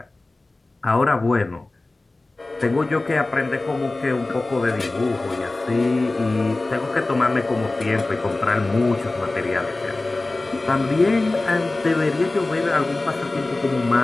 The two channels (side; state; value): right; quieter; 3.0 dB